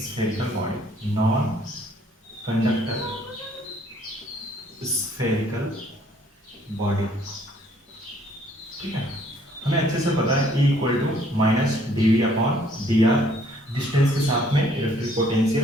spherical body, non conductor spherical body. ठीक है, हमें अच्छे से पता है E equal to minus dV upon dr, distance के साथ में इलेक्ट्रिक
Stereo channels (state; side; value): normal; both; correlation 0.62